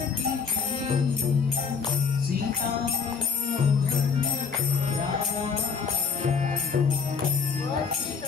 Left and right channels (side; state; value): right; quieter; 5.7 dB